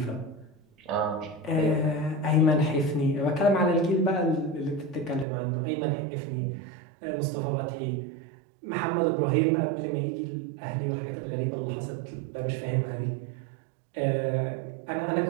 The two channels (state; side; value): drops out; left; at 5.2 s